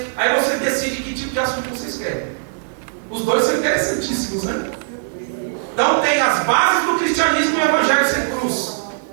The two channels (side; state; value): left; silent; digital silence